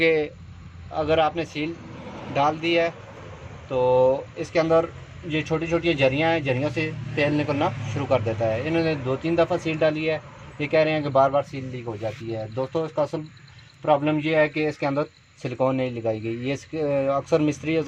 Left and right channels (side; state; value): both; identical; correlation 1.00